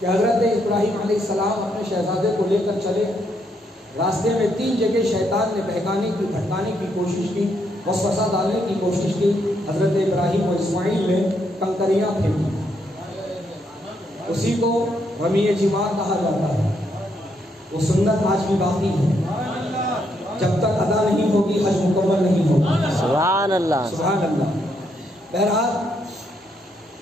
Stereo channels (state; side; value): normal; both; correlation 0.76